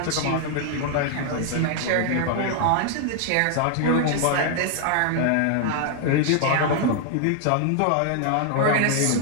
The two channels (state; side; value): different; both; correlation 0.00